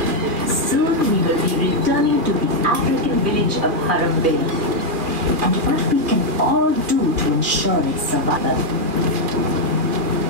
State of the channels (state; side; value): late; left; 2.4 ms